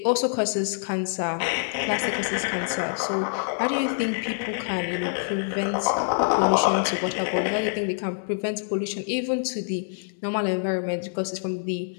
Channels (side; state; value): right; silent; digital silence